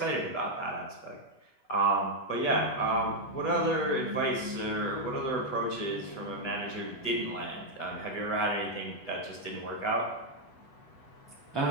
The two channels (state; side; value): late; right; 8.1 ms